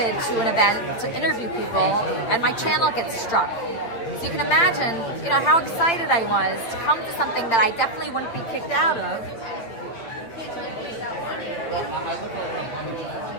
to an event to interview people, and my channel gets struck. So you can imagine, you know, how excited I was to come to something that I definitely wouldn't be kicked out of.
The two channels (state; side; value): late; right; 9.1 ms